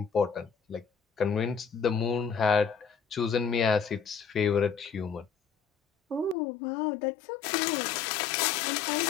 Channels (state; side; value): drops out; right; at 6.4 s